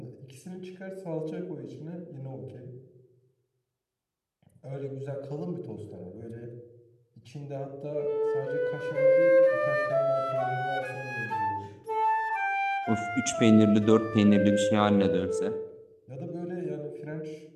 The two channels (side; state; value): both; identical; correlation 1.00